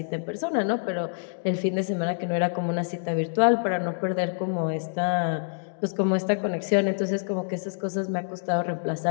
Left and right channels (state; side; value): silent; right; digital silence